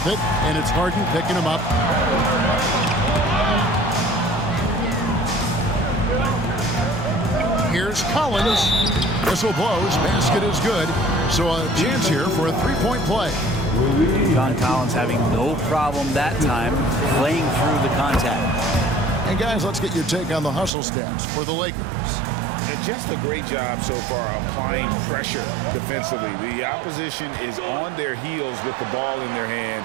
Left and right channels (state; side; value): drops out; left; at 20.7 s